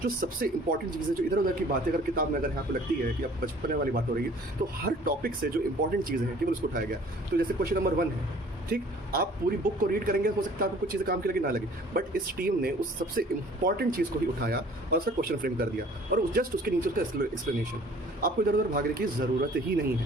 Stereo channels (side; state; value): both; normal; correlation 0.52